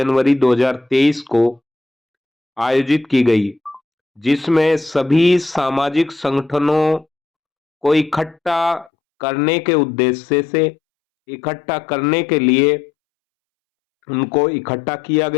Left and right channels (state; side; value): drops out; right; at 8.9 s